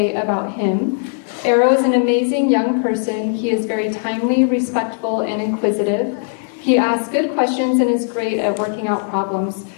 about him. Arrow is an amazing young person. He is very timely, respectful, and inquisitive. He asks good questions and is great at working out problems.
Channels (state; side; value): silent; right; 67 dB below the other